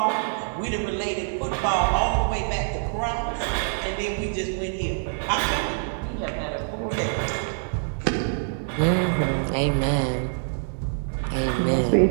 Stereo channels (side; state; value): left; silent; 56 dB below the other